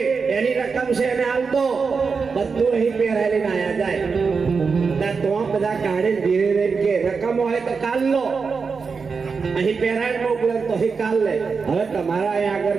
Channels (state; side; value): quieter; left; 5.1 dB